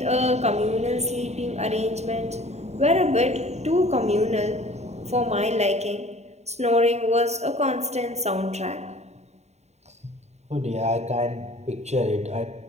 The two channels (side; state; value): left; late; 0.32 ms